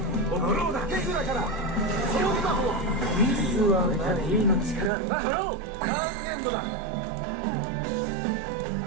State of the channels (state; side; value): drops out; left; at 4.9 s